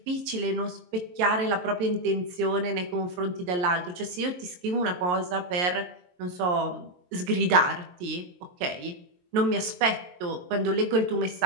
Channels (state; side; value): late; left; 22 ms